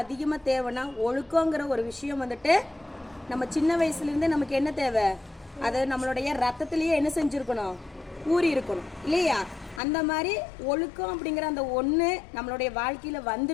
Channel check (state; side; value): drops out; right; at 9.8 s